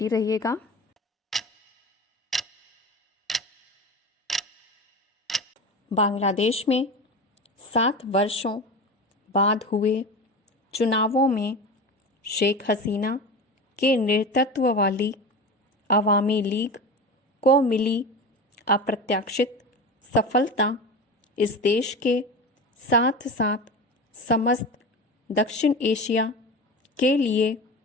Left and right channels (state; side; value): normal; both; correlation 0.28